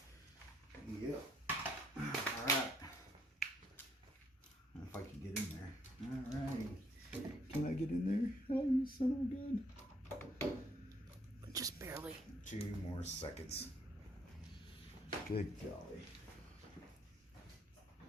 Yep. Alright. son of a gun. Just barely. 2 more seconds. Good golly.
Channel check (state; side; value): normal; both; correlation 0.68